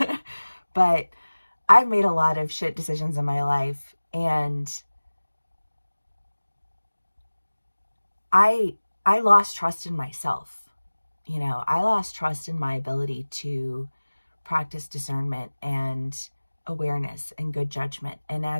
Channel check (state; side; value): inverted; both; correlation -1.00